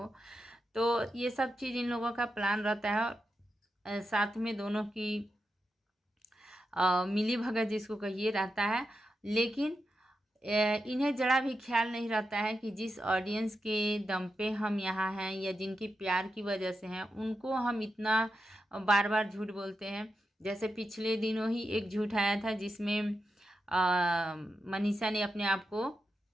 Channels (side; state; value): both; normal; correlation 0.88